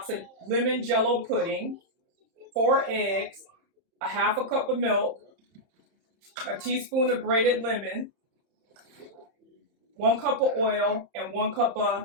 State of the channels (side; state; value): left; late; 30 ms